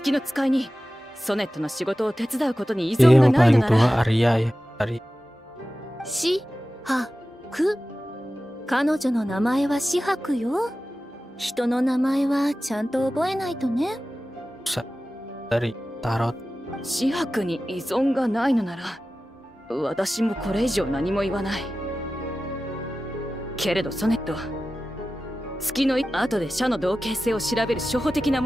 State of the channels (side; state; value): both; normal; correlation 0.95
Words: の使いにソネットの仕事を手伝うことに依 Dia 存が yang ないの paling なら。 tua Arya ya. Arya. しはく。彼女の名前は紫伯よ。人の名前はちゃんと覚えないとね。 Dari Tarot. 紫伯に依存がないのなら、私もこれ以上何も言わない。けれどソネット、月の後で社の同型性を調べる初歩的な